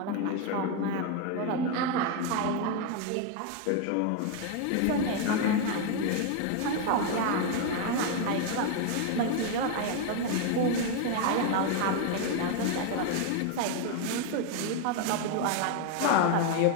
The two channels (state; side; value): different; both; correlation 0.01